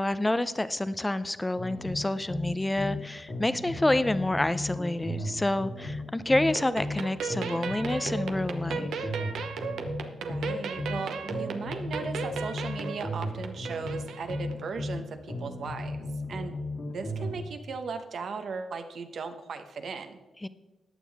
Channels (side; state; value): both; normal; correlation 0.92